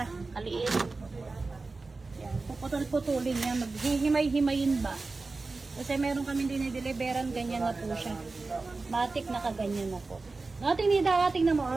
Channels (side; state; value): left; quieter; 3.7 dB